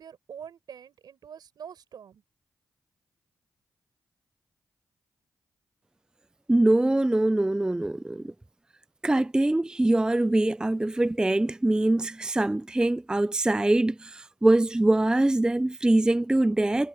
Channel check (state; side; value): normal; both; correlation 0.98